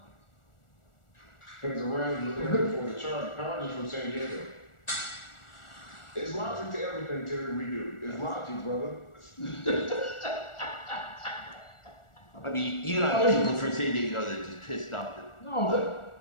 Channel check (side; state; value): right; late; 1.4 ms